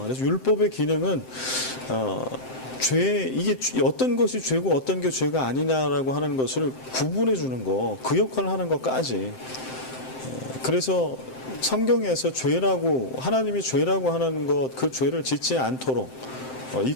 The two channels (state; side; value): late; right; 7.7 ms